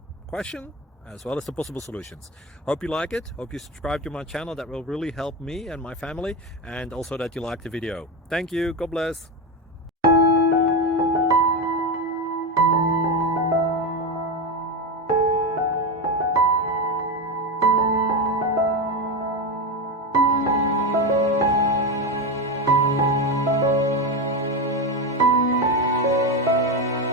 question as well as the possible solutions. Hope you like it, hope you subscribe to my channel. That will really help me and my family, and also that you like the video. Thank you, God bless.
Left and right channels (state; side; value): normal; both; correlation 0.14